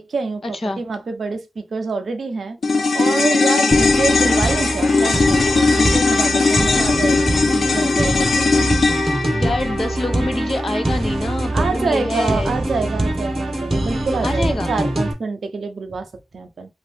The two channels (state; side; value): normal; both; correlation 0.90